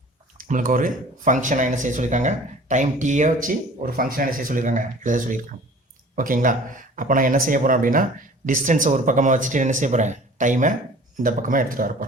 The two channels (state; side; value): normal; both; correlation 0.46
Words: நம்மளுக்கு ஒரு ஃபங்க்ஷனாக என்ன செய்ய சொல்லியிருக்காங்க, டைம் டீயை வச்சு ஒரு ஃபங்க்ஷனாக என்ன செய்ய சொல்லியிருக்காங்க, எழுத சொல்லியிருக்காங்க. ஓகேங்களா? அப்போ நான் என்ன செய்ய போகிறேன் அப்படின்னா, டிஸ்டன்ஸை ஒரு பக்கமாக வச்சுட்டு என்ன செய்ய போகிறேன், டைமை இந்த பக்கமாக எடுத்துகிட்டு வர